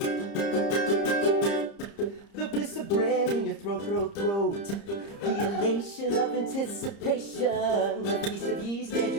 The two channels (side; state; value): right; late; 30 ms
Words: The bliss of bread in your throat. The elation of anticipation. The feast of yeast as